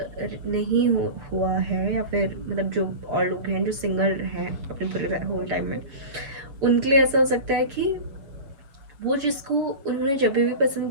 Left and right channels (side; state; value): left; late; 7.0 ms